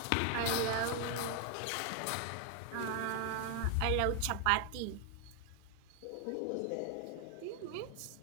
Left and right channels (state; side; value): different; both; correlation 0.00